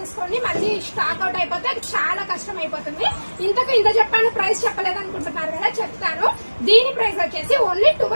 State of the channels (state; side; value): inverted; both; correlation -1.00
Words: మళ్ళీ స్టాక్ అవుట్ అయిపోతే అది చాలా కష్టం అయిపోతుంది. ఇంత చెప్పాను, ప్రైస్ చెప్పలేదు అనుకుంటున్నారు కదా, చెప్తాను. దీని ప్రైస్ వచ్చేసి ఓన్లీ